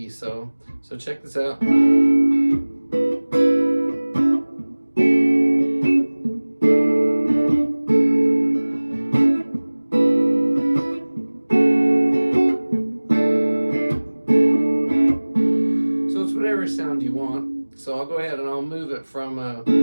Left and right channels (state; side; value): inverted; both; correlation -1.00